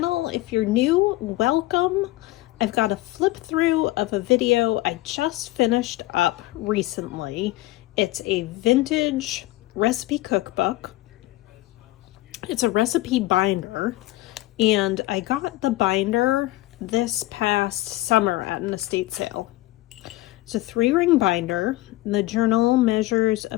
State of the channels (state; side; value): quieter; right; 17.9 dB